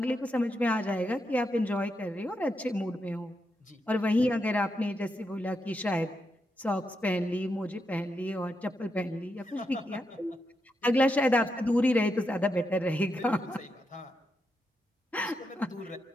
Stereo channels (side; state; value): both; normal; correlation 0.84